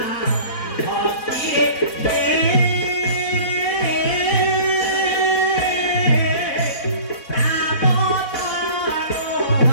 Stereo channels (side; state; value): right; late; 4.1 ms